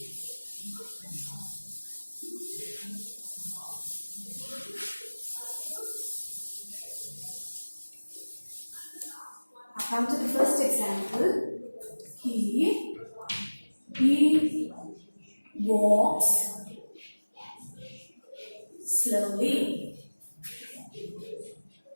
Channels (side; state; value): both; inverted; correlation -1.00